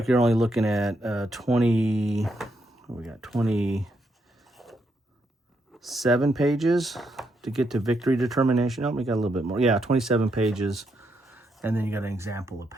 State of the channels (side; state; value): both; normal; correlation 0.79